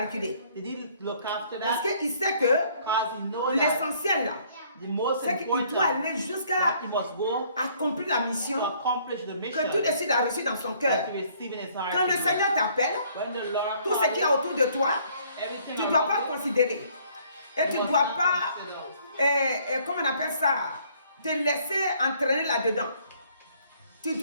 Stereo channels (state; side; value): inverted; both; correlation -0.62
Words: Did he look after Parce that? qu'il sait que Because he knows that l'essentiel là, the most c'est qu'il important doit aller jusqu'à that he must go accomplir la mission to accomplish the mission que tout de suite a reçu dans son cœur. that he received in his heart. Quand le Seigneur t'appelle, When the Lord tout ce qu'il y a autour de toi, everything tu ne dois around pas you, considérer. Et tu you ne must dois not pas, consider. comment on appelle ça, te laisser entraîner là-dedans. Tu